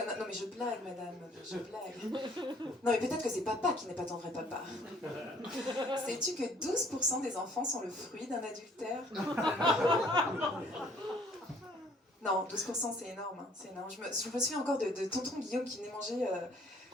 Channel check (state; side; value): normal; both; correlation 0.59